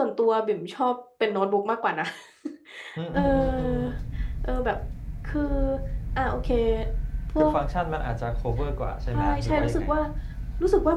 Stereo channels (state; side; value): identical; both; correlation 1.00